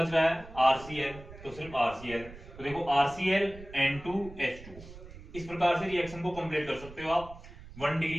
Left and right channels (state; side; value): noise; right; rumble, 16 dB below the sound